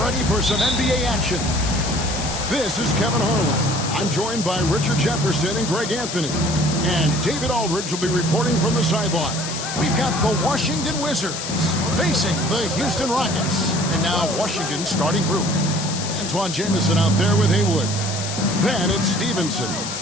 for some NBA action. This is Kevin Harlan. I'm joined by Richard Jefferson and Greg Anthony. And David Aldridge will be reporting from the sideline. We've got the Washington Wizards facing the Houston Rockets. And now Washington's starting group. Antoine Jamison out there with Haywood. Then it's Stevenson,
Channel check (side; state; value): left; noise; hiss, 6 dB below the sound